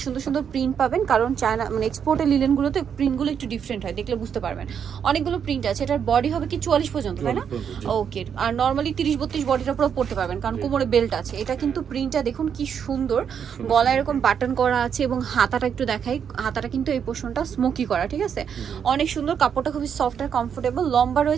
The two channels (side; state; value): left; quieter; 7.7 dB